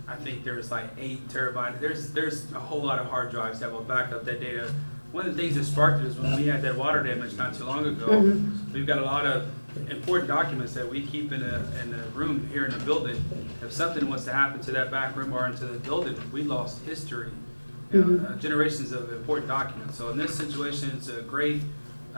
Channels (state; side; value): inverted; both; correlation -1.00